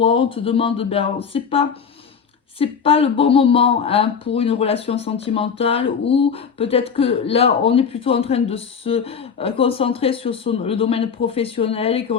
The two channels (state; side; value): quieter; right; 6.5 dB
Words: On te demande, c'est pas le bon moment pour une relation sentimentale, ou peut-être que là on est plutôt en train de se concentrer sur le domaine professionnel et